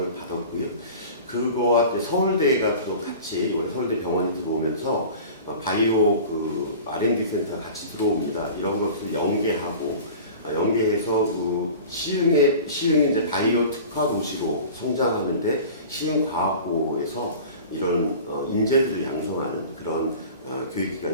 받았고요. 그거와 서울대가 또 같이 서울대 병원이 들어오면서 바이오 그 R&D 센터 같이 들어옵니다. 이런 것을 연계해서 그 시흥이 이제 바이오 특화 도시로 성장하는데 시흥과학고에서 이런 인재들을 양성하는 그런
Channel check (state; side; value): inverted; both; correlation -0.39